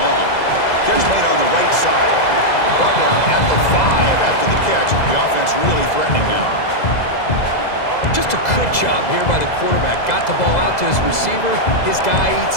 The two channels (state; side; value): late; right; 2.0 ms